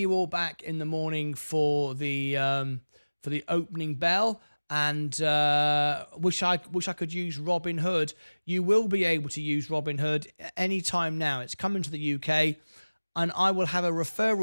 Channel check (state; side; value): inverted; both; correlation -1.00